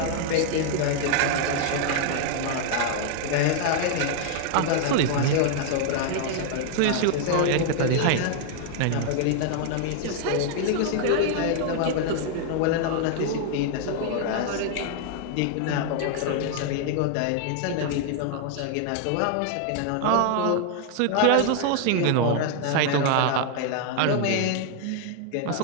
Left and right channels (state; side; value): different; both; correlation 0.00